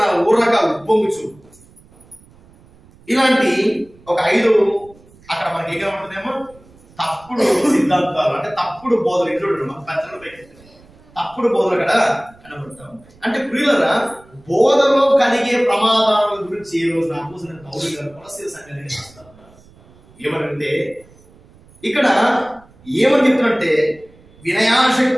ఊరక ఉప్పొంగుచు. ఇలాంటి ఒక 5 అక్కడ మనకి ఏం కనబడుతుందేమో తప్పుడు సిద్ధాంతాలు, అంటే తప్పుడు బోధలు. ఇంట్లో మన పెద్దలు తప్పుడు బోధలు అక్కడ కనబడుతూ ఉంటాయి. అంటే ప్రియులరా, బోధలో కలిగే ప్రమాదాల గురించి ఈ రోజు అపోస్తలుడైన పౌలు గారు కొలస్సీ సంఘానికి రాస్తా ఉన్నారు. ఏమనంటే ఇక్కడ ఏమని చెప్తున్నట్టే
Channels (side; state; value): right; noise; rumble, 27 dB below the sound